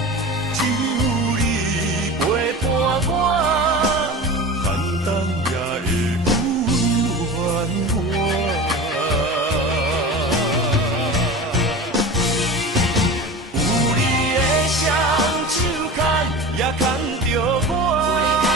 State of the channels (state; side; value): normal; both; correlation 0.31